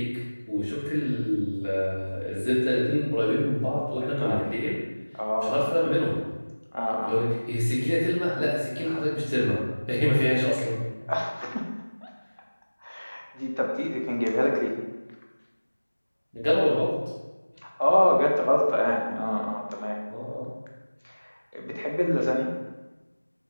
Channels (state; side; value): inverted; both; correlation -1.00